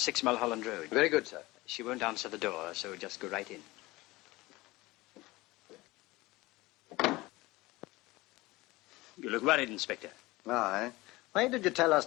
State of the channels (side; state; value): right; quieter; 20.5 dB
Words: Mulholland Road. Very good, sir. She won't answer the door, so just go right in. You look worried, Inspector. Aye. Why did you tell us